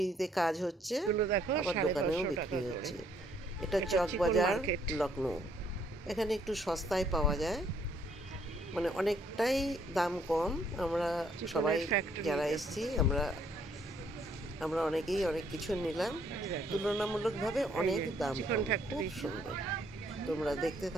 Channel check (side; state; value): both; normal; correlation 0.67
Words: কাজ হচ্ছে, আবার দোকানেও বিক্রি হচ্ছে। এটা চকবাজার লখনৌ। এখানে একটু সস্তায় পাওয়া যায়, মানে অনেকটাই দাম কম। আমরা সবাই যারা এসেছি আমরা অনেকেই অনেক কিছু নিলাম, তুলনামূলকভাবে অনেক দাম, খুব সুন্দর। তোমরা দেখতে